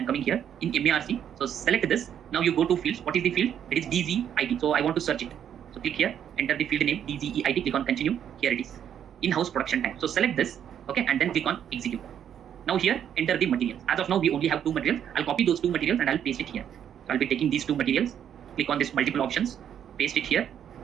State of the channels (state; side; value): quieter; left; 9.2 dB